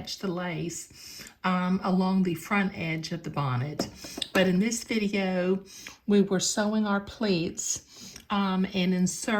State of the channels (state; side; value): identical; both; correlation 1.00